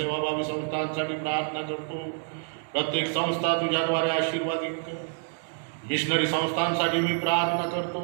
संस्थांसाठी प्रार्थना करतो. प्रत्येक संस्था तुझ्याद्वारे आशीर्वादित कर. मिशनरी संस्थांसाठी मी प्रार्थना करतो.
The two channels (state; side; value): silent; left; 60 dB below the other